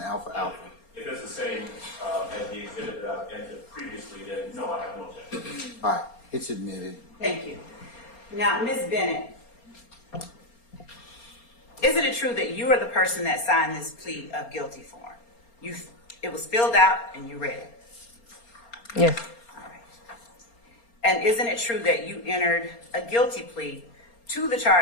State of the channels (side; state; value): right; late; 4.3 ms